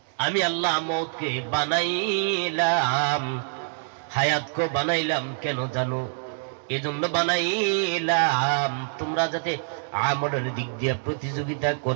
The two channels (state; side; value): silent; left; digital silence